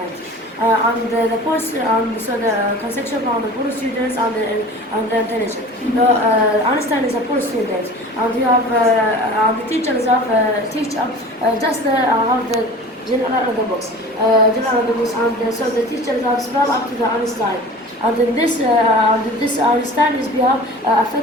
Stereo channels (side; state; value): both; normal; correlation 0.40